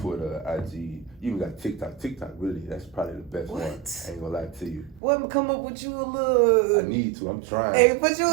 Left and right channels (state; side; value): drops out; left; at 5.0 s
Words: IG, you even got TikTok. TikTok, really, that's probably the best one. I ain't gonna lie to you. What, come up with you a little? I need to. I'm trying. Hey, put you